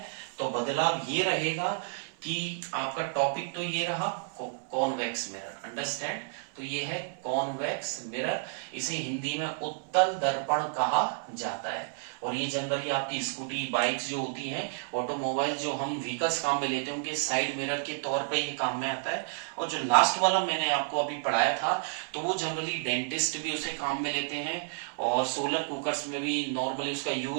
तो बदलाव ये रहेगा कि आपका टॉपिक तो ये रहा कॉन्वेक्स मिरर। अंडरस्टैंड? तो ये है कॉन्वेक्स मिरर। इसे हिंदी में उत्तल दर्पण कहा जाता है। और ये जनरली आपकी स्कूटी, बाइक्स जो होती हैं, ऑटोमोबाइल जो हम व्हीकल्स काम में लेते हैं, उनके साइड मिरर के तौर पे ये काम में आता है। और जो लास्ट वाला मैंने आपको अभी पढ़ाया था, तो वो जनरली डेंटिस्ट भी उसे काम में लेते हैं, और सोलर कुकर्स में भी नॉर्मली उसका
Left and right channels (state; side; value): silent; left; 57 dB below the other